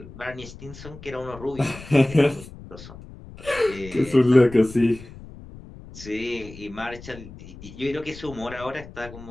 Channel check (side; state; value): left; noise; rumble, 16 dB below the sound